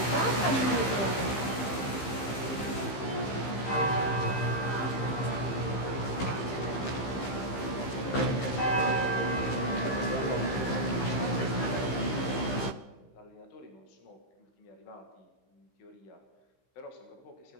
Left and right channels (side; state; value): right; late; 15 ms